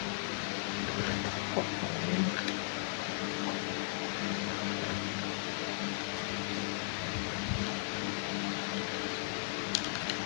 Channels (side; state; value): right; silent; digital silence